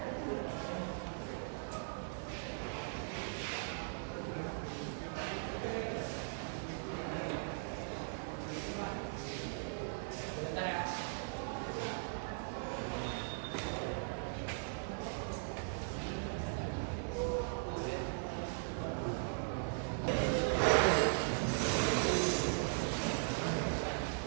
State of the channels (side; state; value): left; silent; digital silence